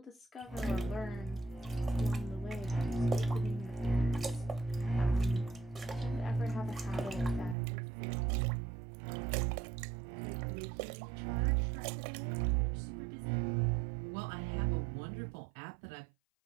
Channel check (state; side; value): drops out; left; at 7.6 s